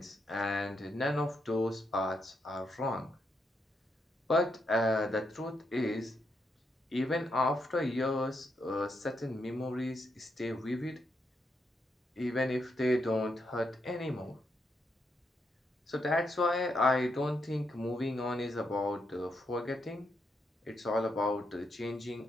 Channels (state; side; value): normal; both; correlation 0.80